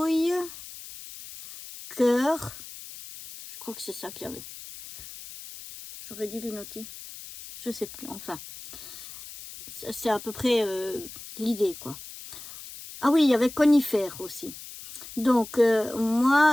cœur. Je crois que c'est ça qu'il y avait. J'aurais dû les noter. Je sais plus, enfin. C'est à peu près l'idée, quoi. Ah oui, il y avait conifère aussi. Donc,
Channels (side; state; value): left; noise; hiss, 14 dB below the sound